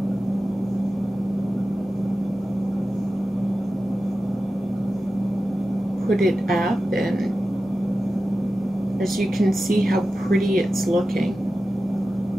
put it up, and as you can see how pretty it's looking.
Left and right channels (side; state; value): both; normal; correlation 0.93